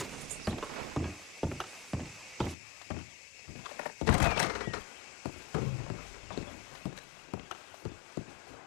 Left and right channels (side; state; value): right; drops out; at 2.6 s